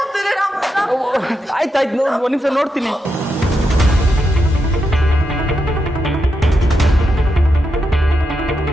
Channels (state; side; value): normal; both; correlation 0.85